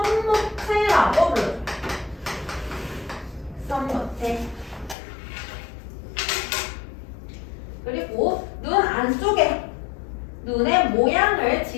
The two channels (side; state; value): right; drops out; at 5.0 s